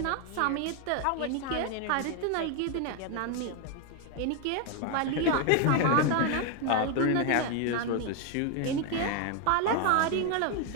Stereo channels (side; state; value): both; different; correlation 0.01